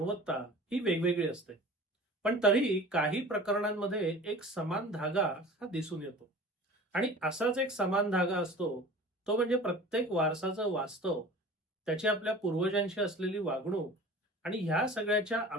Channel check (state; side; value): normal; both; correlation 0.40